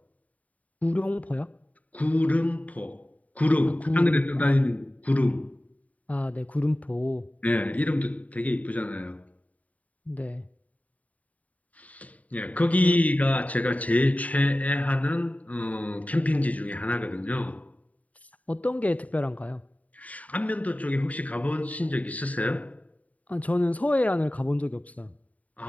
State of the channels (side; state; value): right; late; 0.070 ms